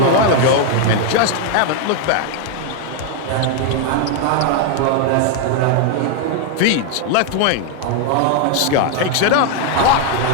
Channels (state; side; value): different; both; correlation 0.01